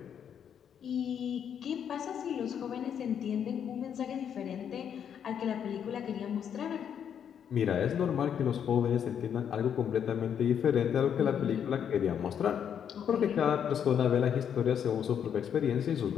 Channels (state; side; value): quieter; right; 8.4 dB